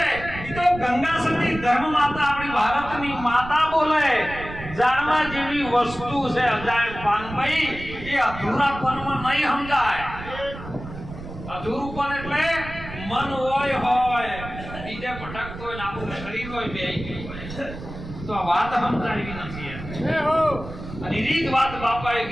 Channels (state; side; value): noise; right; rumble, 12 dB below the sound